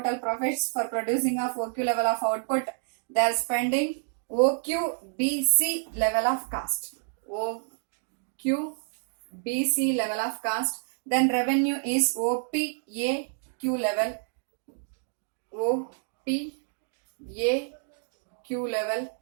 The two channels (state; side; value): silent; left; digital silence